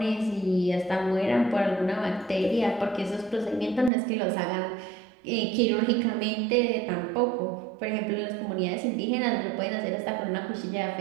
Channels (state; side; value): drops out; left; at 3.9 s